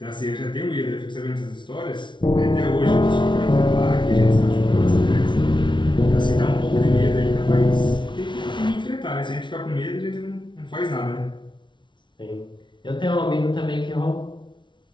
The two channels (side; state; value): right; late; 0.24 ms